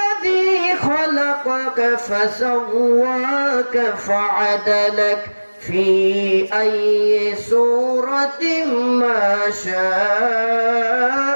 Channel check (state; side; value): inverted; both; correlation -1.00